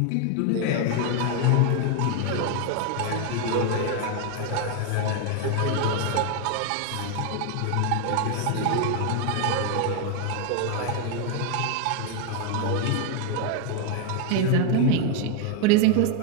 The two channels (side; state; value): both; different; correlation 0.00